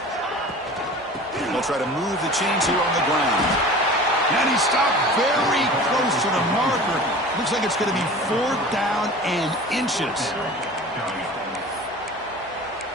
They'll try to move the chains here on the ground. And he stopped very close to the marker. Looks like it's going to be fourth down and inches.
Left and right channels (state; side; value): normal; both; correlation 0.39